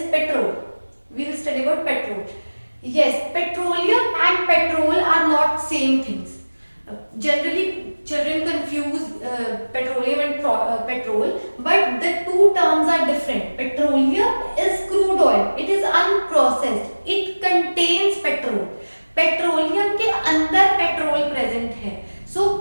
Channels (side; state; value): both; inverted; correlation -1.00